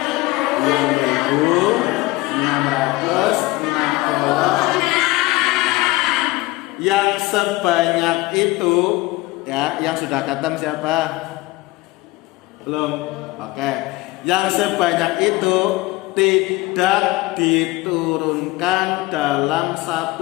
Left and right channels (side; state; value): right; quieter; 20.3 dB